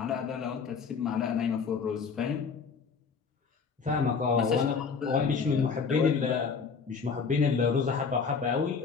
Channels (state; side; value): quieter; right; 5.5 dB